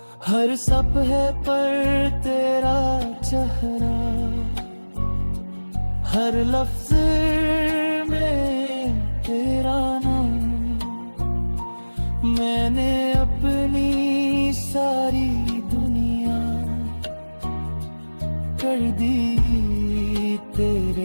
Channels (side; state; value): both; inverted; correlation -1.00